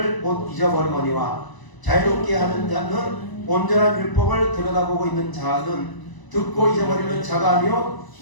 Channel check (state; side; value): late; right; 1.0 ms